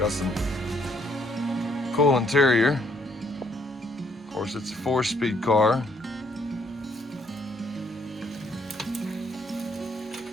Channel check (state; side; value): normal; both; correlation 0.68